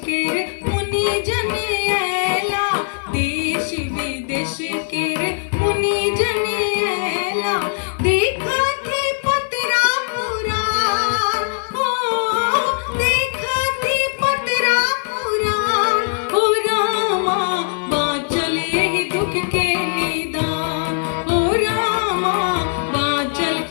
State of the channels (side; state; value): right; silent; digital silence